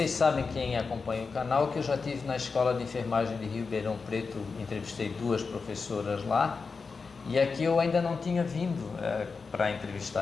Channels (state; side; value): quieter; right; 4.8 dB